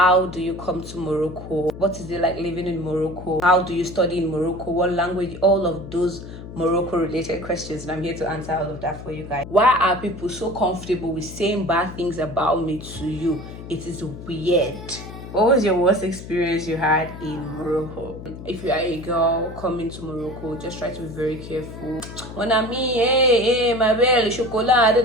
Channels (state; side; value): noise; left; hum, 12 dB below the sound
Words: do you come to Morocco? What is it like living in Morocco? How do you study in Morocco? What language? All of those Morocco related questions, and I'm here to answer all of that for you guys. Why are people so comfortable with saying bad things about me to you? It is weird. What was your worst experience you had in Morocco? If you are a girl coming to Morocco, just try to be very careful. Mon ami, hey, ma belle, chocolat, da